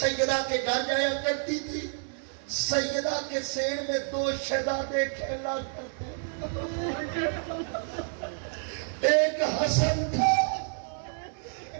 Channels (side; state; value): left; silent; 58 dB below the other